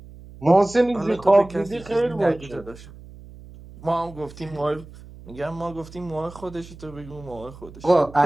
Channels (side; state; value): right; noise; hum, 18 dB below the sound